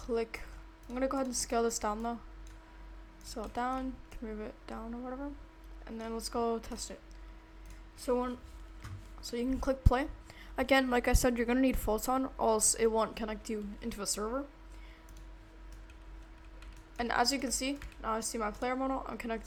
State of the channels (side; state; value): both; identical; correlation 1.00